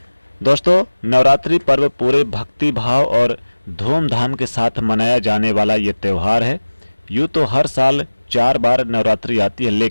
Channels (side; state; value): both; inverted; correlation -1.00